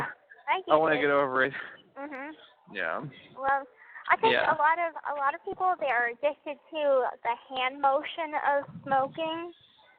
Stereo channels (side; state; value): both; identical; correlation 1.00